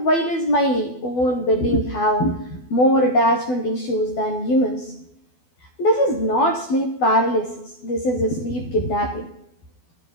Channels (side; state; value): right; late; 12 ms